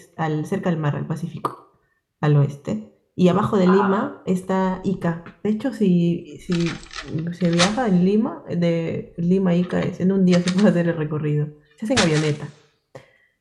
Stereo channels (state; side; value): identical; both; correlation 1.00